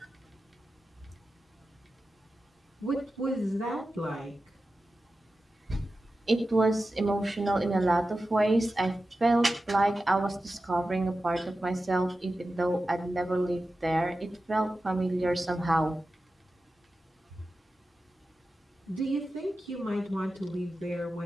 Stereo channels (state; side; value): normal; both; correlation 0.93